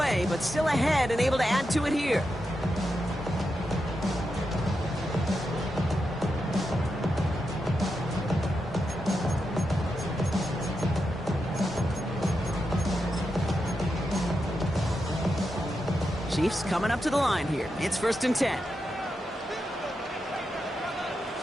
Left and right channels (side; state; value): both; normal; correlation 0.87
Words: but still ahead and able to add to it here. Chiefs coming up to the line here. It's 1st and 10.